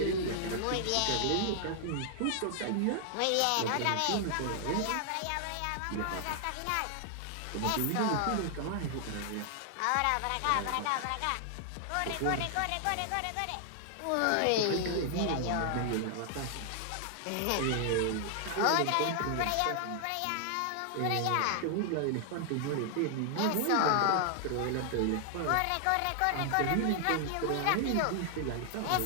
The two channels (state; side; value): different; both; correlation 0.00